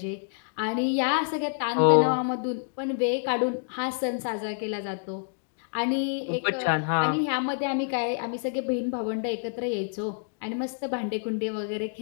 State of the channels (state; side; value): silent; right; digital silence